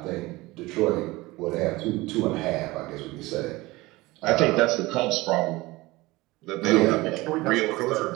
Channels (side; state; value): left; quieter; 20.9 dB